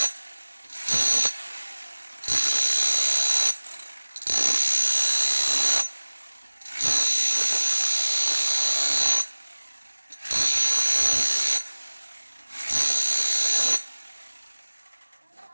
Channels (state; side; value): inverted; both; correlation -1.00